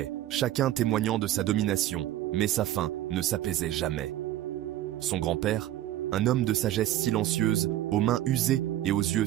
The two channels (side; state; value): left; quieter; 13.5 dB